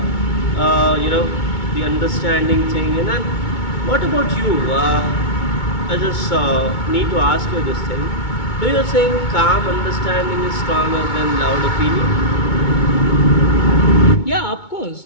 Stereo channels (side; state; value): right; late; 2.2 ms